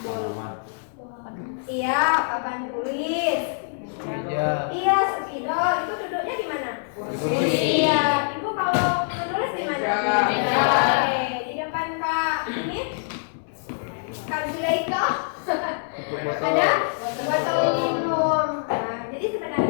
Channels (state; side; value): silent; right; 62 dB below the other